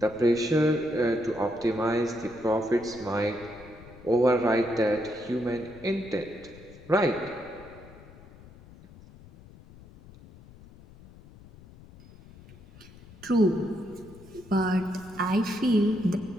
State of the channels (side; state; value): left; noise; rumble, 21 dB below the sound